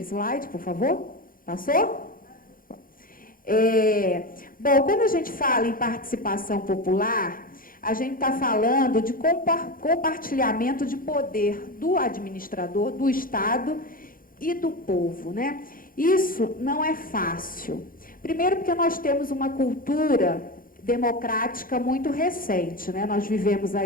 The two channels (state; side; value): late; right; 0.41 ms